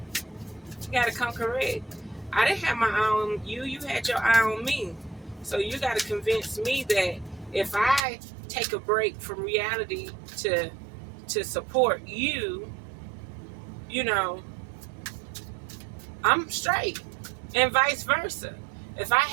He got to come correct. I didn't have my eye on you. You had your eye on me. So you got to convince me that if I take a break from reality to support you, you know, I'm straight. And vice versa. If I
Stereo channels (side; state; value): left; drops out; at 8.1 s